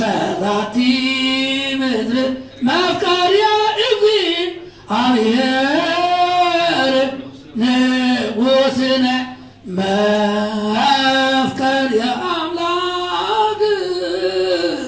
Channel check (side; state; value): both; identical; correlation 1.00